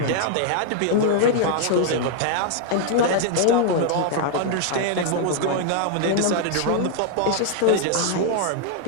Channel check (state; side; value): different; both; correlation 0.00